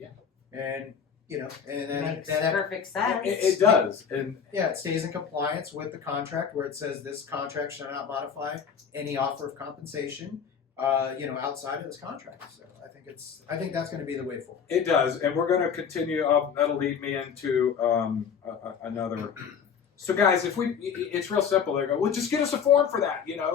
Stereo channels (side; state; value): right; quieter; 7.1 dB